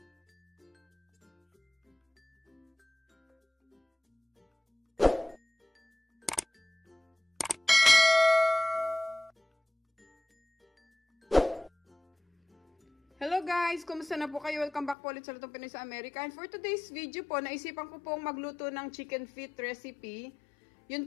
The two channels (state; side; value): drops out; right; at 15.0 s